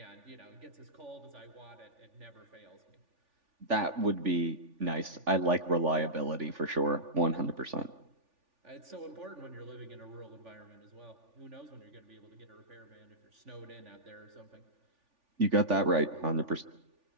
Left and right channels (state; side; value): late; left; 3.5 ms